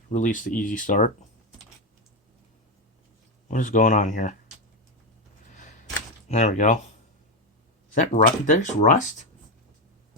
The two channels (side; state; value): both; normal; correlation 0.09